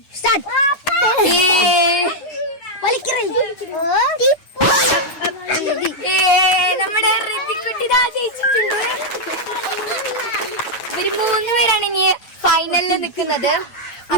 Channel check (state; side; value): late; right; 9.2 ms